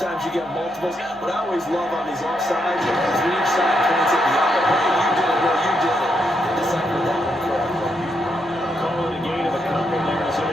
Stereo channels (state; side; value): normal; both; correlation 0.79